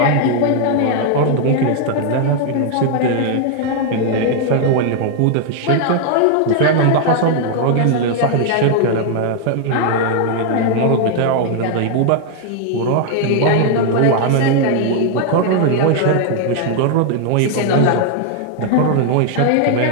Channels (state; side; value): different; both; correlation 0.00